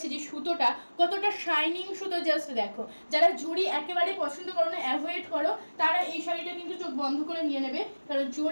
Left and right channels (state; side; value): inverted; both; correlation -1.00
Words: যে সুতোটা কতটা শাইনিং সুতো, জাস্ট দেখো। যারা জড়ি একেবারে পছন্দ করো না, অ্যাভয়েড করো, তারা এই শাড়িটা কিন্তু চোখ বন্ধ করে নিয়ে নেবে, কারণ